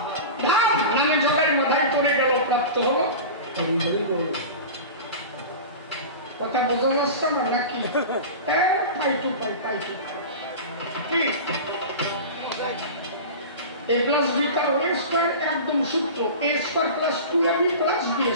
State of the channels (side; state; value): both; inverted; correlation -0.30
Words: নামে জগায় মাথায় পড়ে গেল, প্রাপ্ত হলো। কথা বোঝা যাচ্ছে না নাকি? পাই টু পাই, পাই টু পাই। কি a plus b তার a স্কয়ার একদম সূত্র, a square plus 2ab plus b